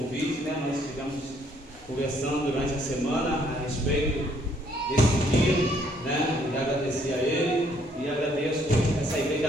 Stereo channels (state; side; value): normal; both; correlation 0.66